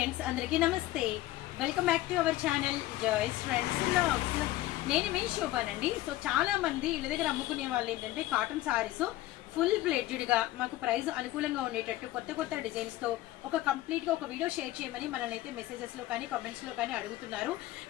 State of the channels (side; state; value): right; quieter; 16.1 dB